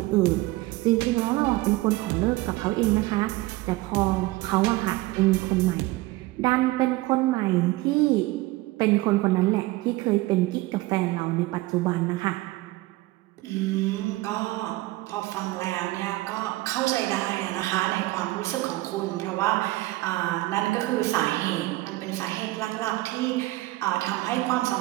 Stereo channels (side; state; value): left; quieter; 19.4 dB